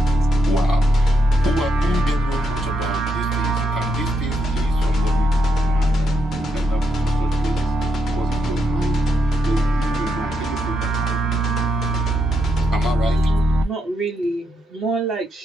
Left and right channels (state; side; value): normal; both; correlation 0.80